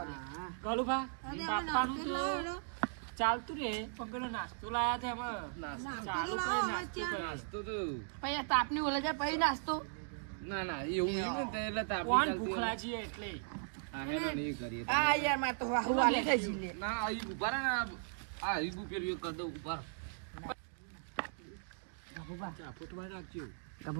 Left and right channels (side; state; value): left; silent; digital silence